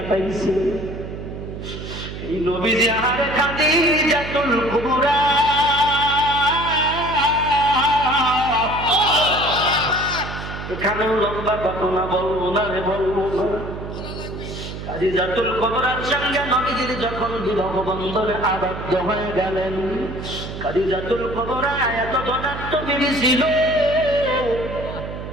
এই নবী যে আহারে খাদিজাতুল কুবরা এখানেও লম্বা ঘটনা বলবো না রে বলবো না খাদিজাতুল কুবরার সঙ্গে নবীজি যখন বিবাহ বন্ধনে আবদ্ধ হয়ে গেলেন খাদিজাতুল কুবরা এত ধনাত্ম বিবি ছিল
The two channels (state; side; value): noise; right; hum, 9 dB below the sound